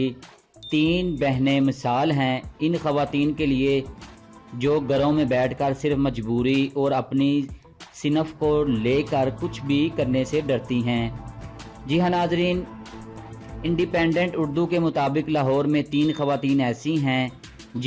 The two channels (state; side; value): identical; both; correlation 1.00